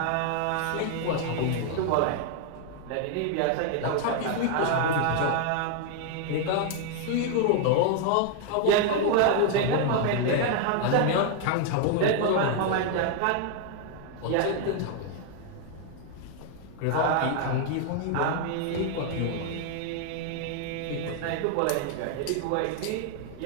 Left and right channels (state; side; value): different; both; correlation 0.00